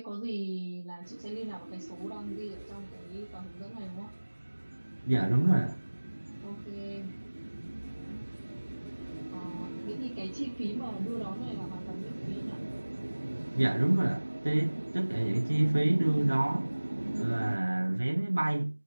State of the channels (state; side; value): inverted; both; correlation -1.00